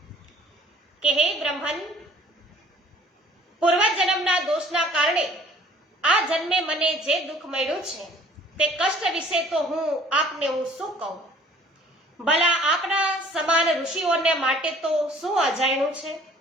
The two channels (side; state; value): both; normal; correlation 0.53